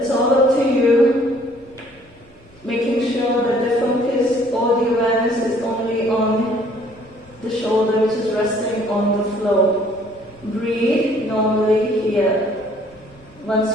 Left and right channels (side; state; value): both; normal; correlation 0.59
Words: all up to you, making sure that the focus or the awareness is only on the shoulder, which is resting on the floor. Breathe normally here. Once